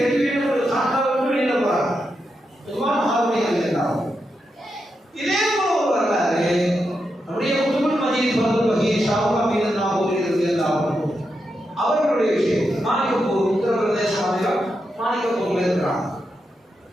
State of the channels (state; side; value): normal; both; correlation 0.86